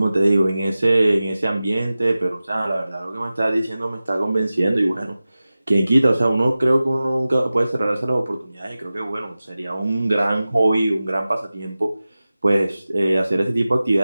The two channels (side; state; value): both; inverted; correlation -0.96